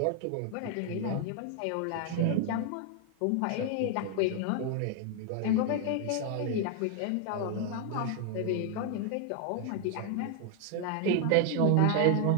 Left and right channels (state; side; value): different; both; correlation 0.00